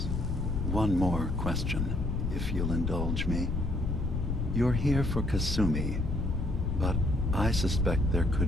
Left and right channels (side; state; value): left; noise; rumble, 2 dB below the sound